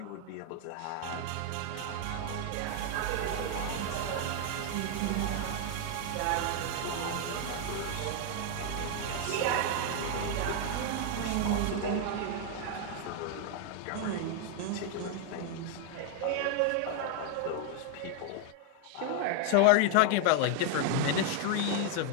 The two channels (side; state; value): both; different; correlation 0.00